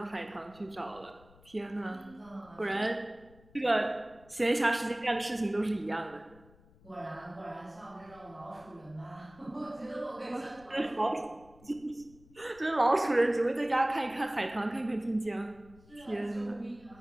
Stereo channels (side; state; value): left; noise; rumble, 25 dB below the sound